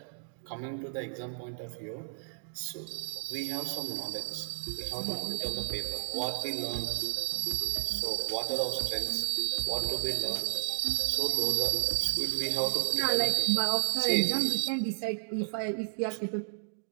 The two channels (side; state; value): left; silent; digital silence